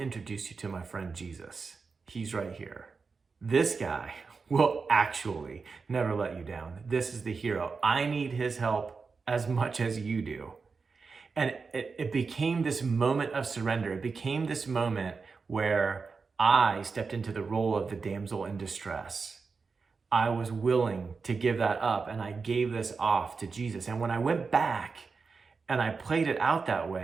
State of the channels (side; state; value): left; quieter; 4.8 dB